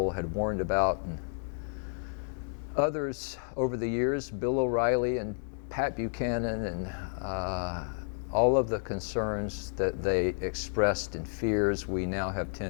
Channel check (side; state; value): right; silent; digital silence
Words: had warned about, and others over the years, Bill O'Reilly and Pat Buchanan, and all of the concerns that they expressed and fears. We now have